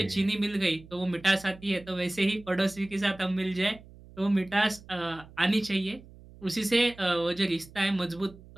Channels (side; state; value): right; noise; hum, 21 dB below the sound